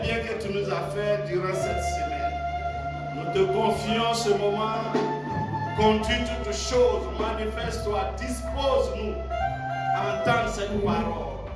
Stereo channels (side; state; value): both; identical; correlation 1.00